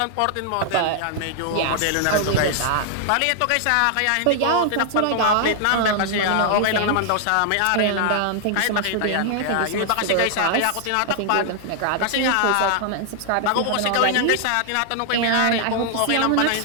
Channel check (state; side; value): different; both; correlation 0.00